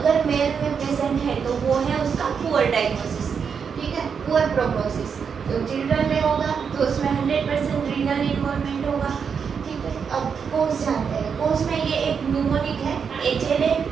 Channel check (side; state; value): left; quieter; 6.5 dB